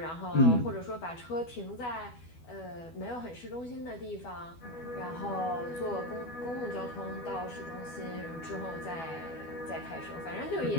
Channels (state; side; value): late; right; 12 ms